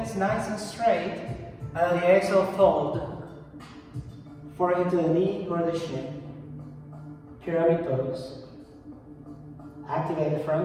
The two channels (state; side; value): identical; both; correlation 1.00